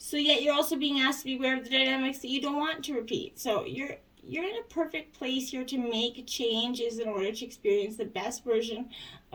yet you're also being asked to be aware of the dynamics that you don't want to repeat. So you're in a perfect place here to make changes in order to experience the best version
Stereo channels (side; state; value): both; identical; correlation 1.00